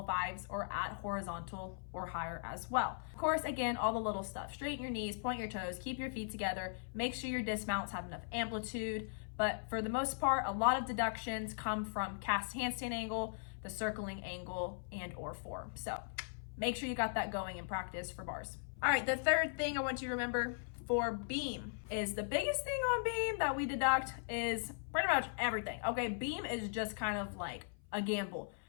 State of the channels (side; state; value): right; silent; 52 dB below the other